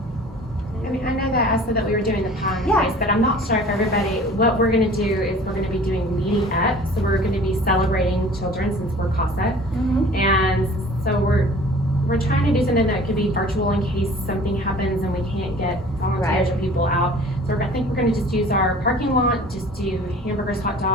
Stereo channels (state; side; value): normal; both; correlation 0.47